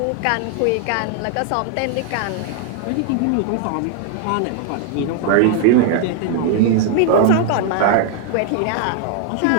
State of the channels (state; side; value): different; both; correlation 0.00